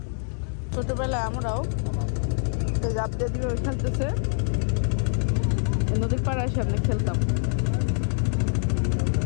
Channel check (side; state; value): right; silent; 62 dB below the other